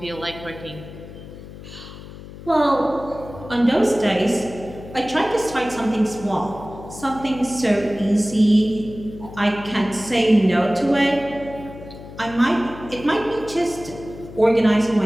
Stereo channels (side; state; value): left; noise; hum, 15 dB below the sound